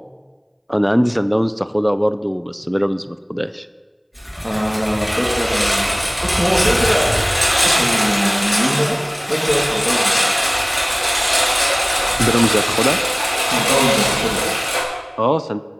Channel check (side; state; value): both; identical; correlation 1.00